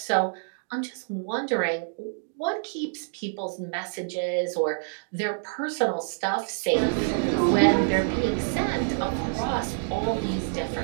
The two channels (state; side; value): silent; left; digital silence